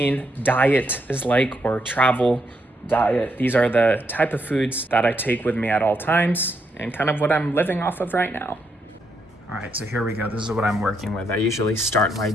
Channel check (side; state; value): both; normal; correlation 0.78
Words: diet is like, or travel diet. These are the type of foods that I take with me at all times and kind of what I'm living off of right now. All right, so here we go. This is what I'm working with. I usually start my